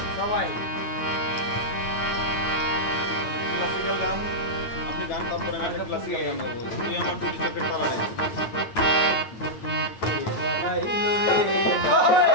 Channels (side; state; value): right; late; 9.2 ms